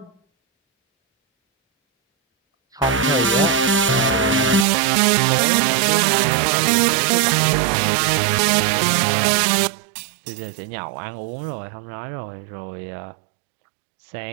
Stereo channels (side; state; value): left; drops out; at 4.7 s